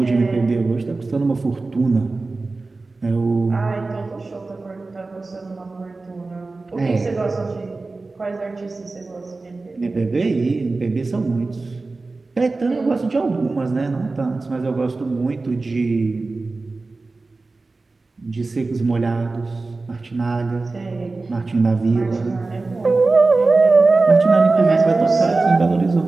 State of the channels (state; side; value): quieter; left; 3.6 dB